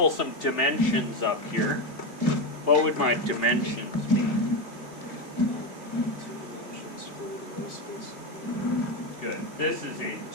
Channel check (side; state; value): right; late; 2.8 ms